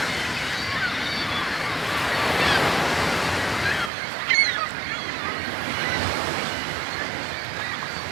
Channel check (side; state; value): left; drops out; at 3.9 s